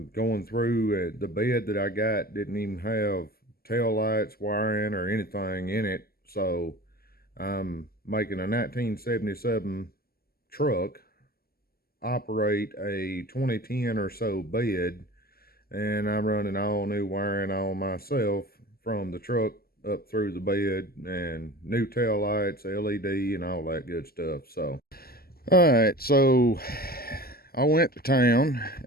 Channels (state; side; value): late; right; 0.44 ms